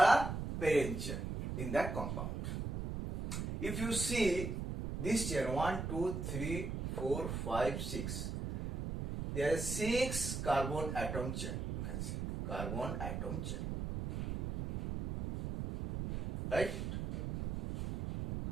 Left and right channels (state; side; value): noise; right; rumble, 4 dB below the sound